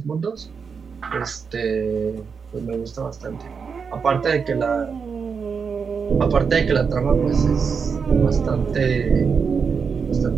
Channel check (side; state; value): left; quieter; 5.9 dB